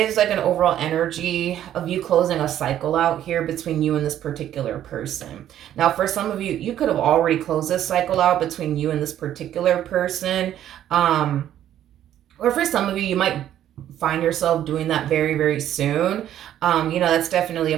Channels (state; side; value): quieter; left; 11.4 dB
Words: like an overall energy of you closing a cycle out here between you and this particular person. Now, for some of you, you could have already closed this cycle out between you and this particular person. Or for some of you, you might find yourself doing that very, very soon. That's definitely a